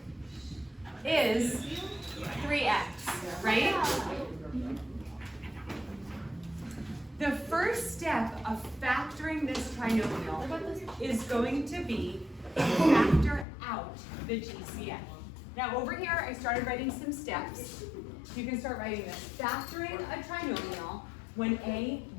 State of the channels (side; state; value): right; drops out; at 13.5 s